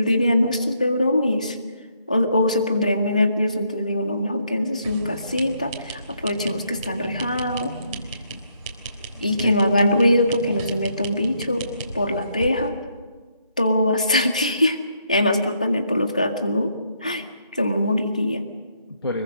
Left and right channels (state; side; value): inverted; both; correlation -0.73